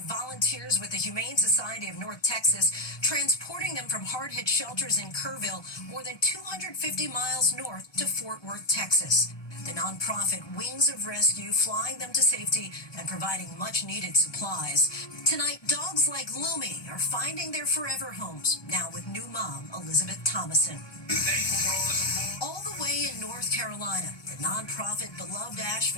with the Humane Society of North Texas, transporting them from hard-hit shelters in Kerrville, more than 250 miles north to Fort Worth, Texas. The nonprofit Wings of Rescue flying them to safety and providing much-needed supplies. Tonight, dogs like Lumi are finding their forever homes, now with new mom, Elizabeth Thomason. All the way in North Carolina, the nonprofit Beloved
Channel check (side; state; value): right; late; 1.2 ms